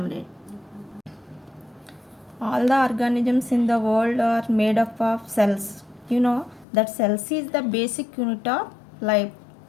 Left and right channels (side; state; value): right; drops out; at 6.7 s